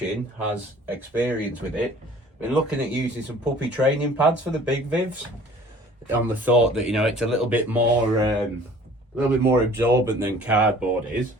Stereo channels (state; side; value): normal; both; correlation 0.50